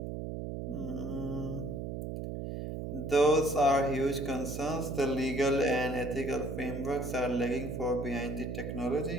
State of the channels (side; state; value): right; noise; hum, 5 dB below the sound